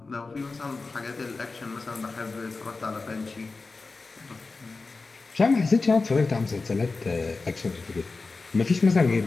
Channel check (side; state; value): right; quieter; 3.9 dB